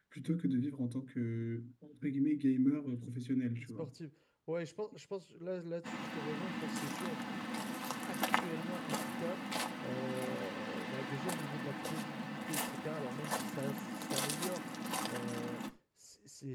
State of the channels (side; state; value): both; identical; correlation 1.00